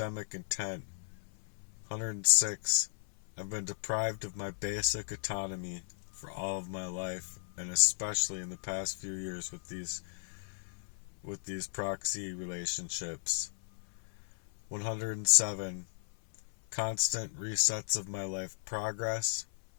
intent. 106. I've been deprived of my basic autonomy for all of my life, and especially in the past few years with these proxy relationships. 107. Constant resets of my life progress.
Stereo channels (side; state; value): right; silent; 54 dB below the other